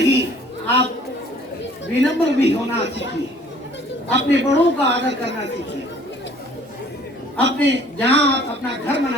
आप विनम्र भी होना सीखिए, अपने बड़ों का आदर करना सीखिए। अपने जहां आप अपना घर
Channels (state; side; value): normal; both; correlation 0.55